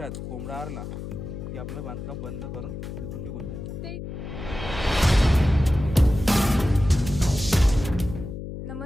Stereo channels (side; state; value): left; noise; hum, 8 dB below the sound